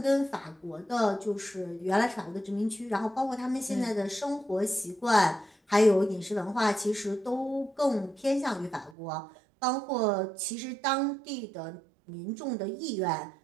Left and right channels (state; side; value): drops out; left; at 9.0 s